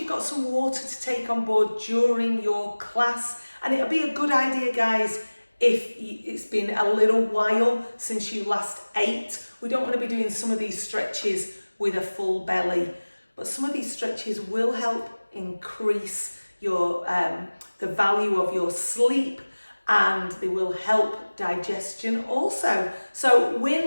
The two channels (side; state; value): both; inverted; correlation -1.00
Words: got some water to take on board during your class, and it'll be a good idea, guys, if it's been a little while since you last ate. We don't want to be doing some of these stretches with a full belly, but some of these stretches will help increase your the value of your sleep, and they will help digestion also. So